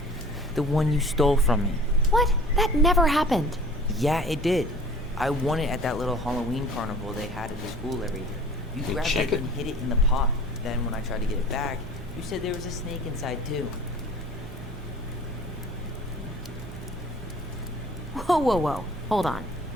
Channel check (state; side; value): noise; right; hum, 15 dB below the sound